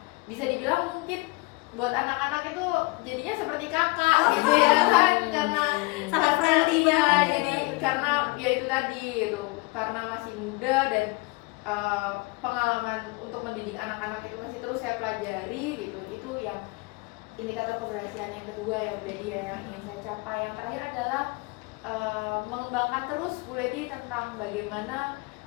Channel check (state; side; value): quieter; right; 25.6 dB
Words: bisa dibilang mungkin buat anak-anak itu jadinya seperti kakak gitu ya kan, karena sangat friendly ya, banget. jadi karena ya itu tadi gitu, karena masih muda dan pengalaman untuk mendidik anak-anak itu masih terus saya pelajari gitu. Itu yang indikator keberhasilan yang kedua ya Bu Lady ya, yang ingin saya capai. Yang terakhir adalah mengembangkan terus Bu Lady tentang bagaimana